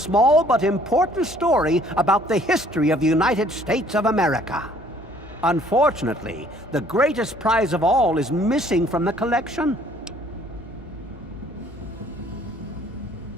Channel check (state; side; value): normal; both; correlation 0.58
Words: but important story about the history of the United States of America. Unfortunately, the greatest prize of all is missing from the collection.